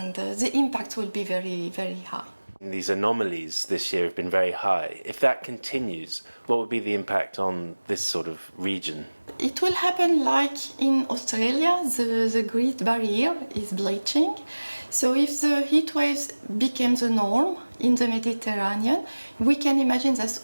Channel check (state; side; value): inverted; both; correlation -1.00